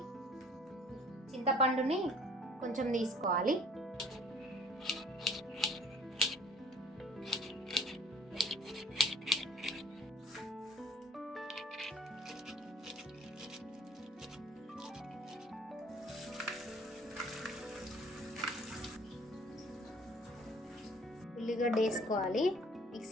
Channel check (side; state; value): both; normal; correlation 0.55